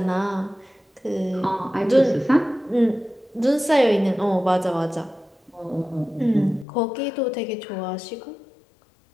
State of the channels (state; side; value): drops out; right; at 6.7 s